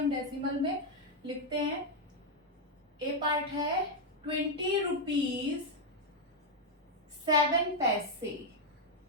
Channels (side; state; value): both; normal; correlation 0.00